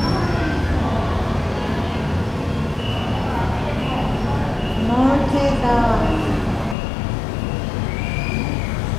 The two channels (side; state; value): right; drops out; at 6.8 s